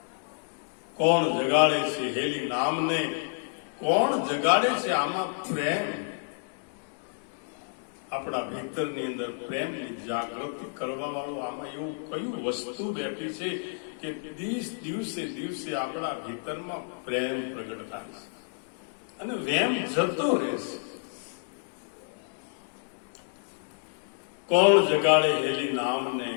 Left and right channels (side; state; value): right; silent; digital silence